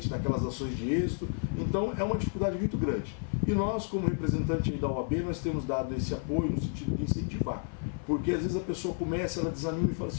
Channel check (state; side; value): silent; right; 57 dB below the other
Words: naquelas ações de êxito. Então é uma dificuldade muito grande. E nós, como representante da OAB, nós temos dado esse apoio no sentido de incentivar. Porque às vezes a pessoa começa, ela desanima e fala